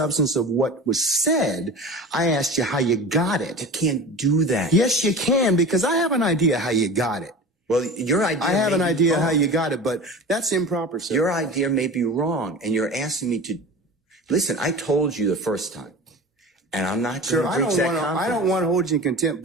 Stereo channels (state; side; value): normal; both; correlation 0.34